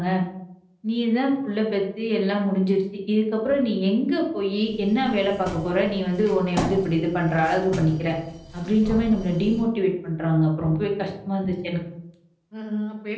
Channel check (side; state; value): both; identical; correlation 1.00